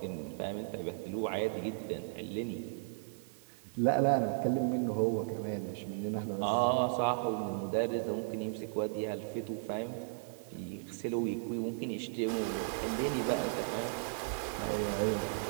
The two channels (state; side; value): silent; left; digital silence